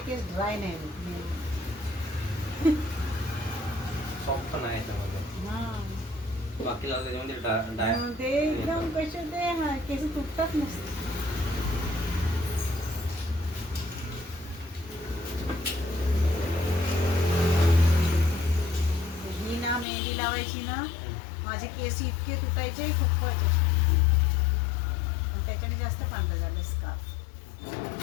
केस ड्राय नाही होत। सॉफ्ट पण आहे त्यामध्ये, हा बाकी लावलं त्याच्यामध्ये ते एकदम कसे ते केस तुटतात नसते। लावायची ना माझे केस इतके तुटायचे खूपच. आणि त्याच्याने जास्त पांढरं झालं स्कार्फ.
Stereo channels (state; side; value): drops out; right; at 19.9 s